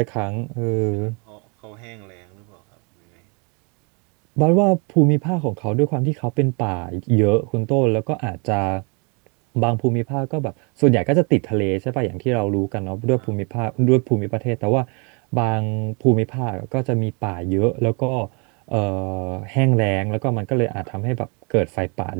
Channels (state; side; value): quieter; left; 33.7 dB